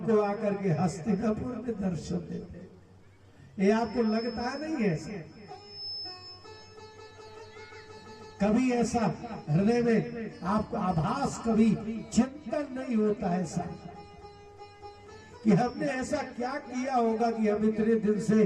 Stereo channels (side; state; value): both; identical; correlation 1.00